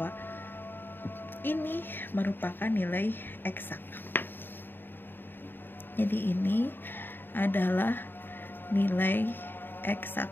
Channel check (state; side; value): late; right; 0.096 ms